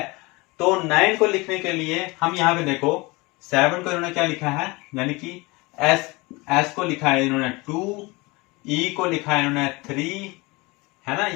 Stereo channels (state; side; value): quieter; right; 24.4 dB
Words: तो 9 को लिखने के लिए हम यहाँ पे देखो 7 को इन्होंने क्या लिखा है, यानी कि S को लिखा है इन्होंने 2, E को लिखा है इन्होंने 3, है ना।